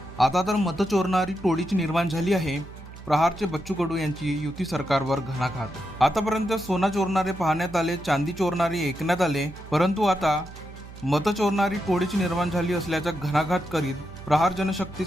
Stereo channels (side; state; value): right; noise; hum, 16 dB below the sound